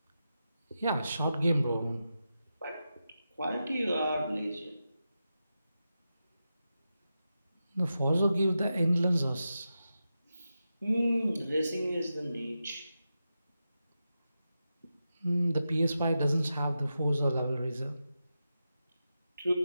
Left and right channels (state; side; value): inverted; both; correlation -0.90